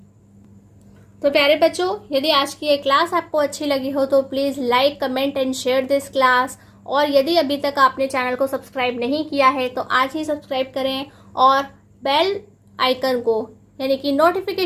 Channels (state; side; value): identical; both; correlation 1.00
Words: तो प्यारे बच्चों, यदि आज की ये क्लास आपको अच्छी लगी हो तो please like, comment and share this class. और यदि अभी तक आपने चैनल को सब्सक्राइब नहीं किया है तो आज ही सब्सक्राइब करें और बेल आइकन को यानी कि